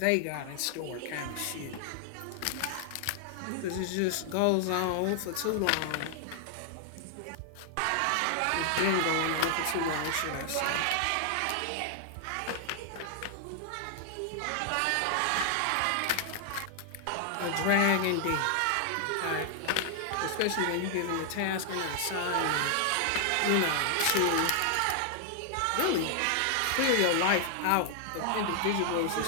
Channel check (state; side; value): different; both; correlation 0.00